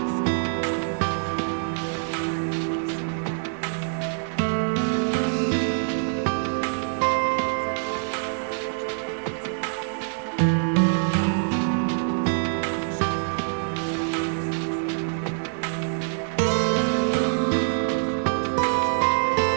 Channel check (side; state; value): left; silent; 62 dB below the other